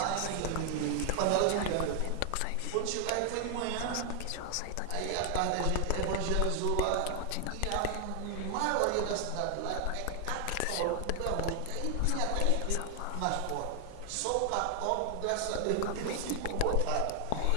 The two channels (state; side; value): different; both; correlation 0.00